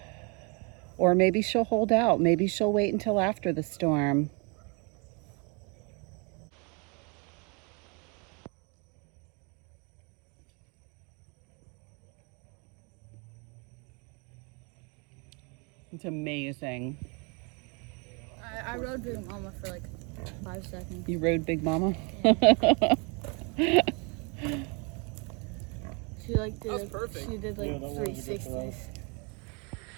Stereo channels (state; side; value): quieter; left; 32.6 dB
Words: or maybe she'll hold out. Maybe she'll wait until after the storm. It's amazing. I rode Big Mama for like 5 seconds. You rode Big Mama? Yeah. She like did she did like 360s.